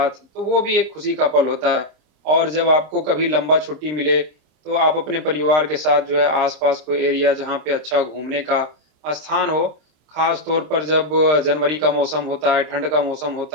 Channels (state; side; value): late; left; 26 ms